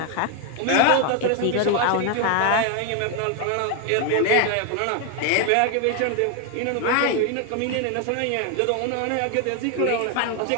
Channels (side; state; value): both; different; correlation 0.00